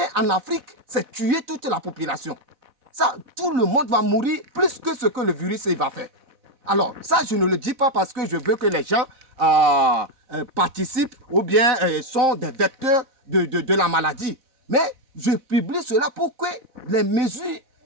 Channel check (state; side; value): late; left; 4.1 ms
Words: en Afrique, c'est tuer toute la population. Ça, tout le monde va mourir plus que ce que le virus va faire. Alors, ça, je ne le dis pas parce que je veux que les gens participent ou bien sont des vecteurs de la maladie. Mais je publie cela pour que les mesures